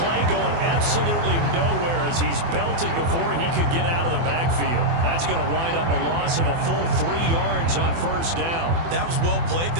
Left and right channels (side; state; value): left; late; 24 ms